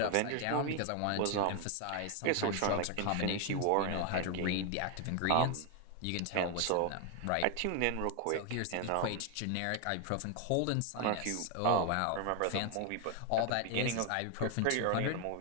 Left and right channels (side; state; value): both; different; correlation 0.01